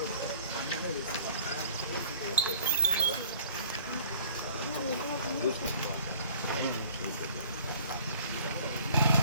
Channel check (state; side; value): inverted; both; correlation -0.53